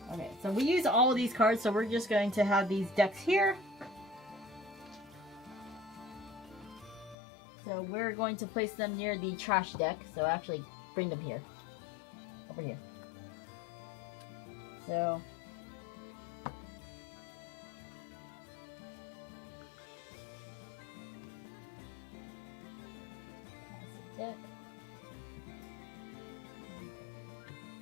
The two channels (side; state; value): right; drops out; at 7.2 s